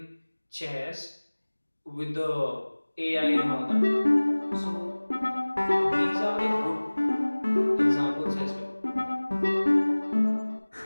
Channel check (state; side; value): inverted; both; correlation -1.00